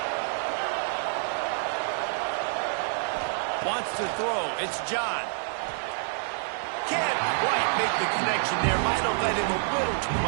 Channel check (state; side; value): silent; left; 60 dB below the other